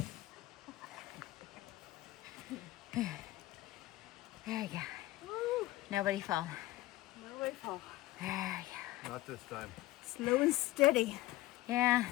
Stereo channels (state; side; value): quieter; right; 17.3 dB